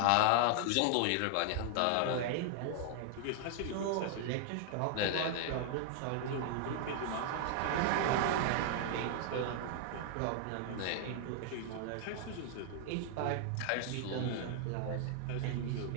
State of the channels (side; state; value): both; different; correlation 0.00